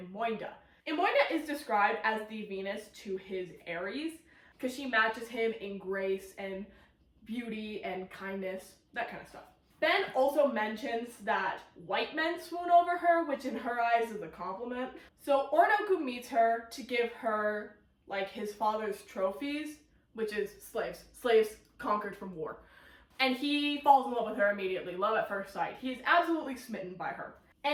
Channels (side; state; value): both; identical; correlation 1.00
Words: Imoinda is described as the Venus to his Aries because she matches him in grace and beauty and kindness, that kind of stuff. Ben also mentions that white men swoon over her, which in her eyes is a compliment. So Oroonoko meets her to give her like his father's trophies, which is slaves conquered from war. And he falls in love with her immediately, love at first sight. He is absolutely smitten by her.